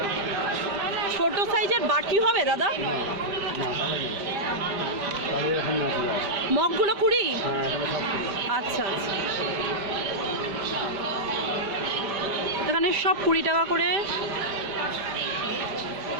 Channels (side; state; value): left; late; 5.1 ms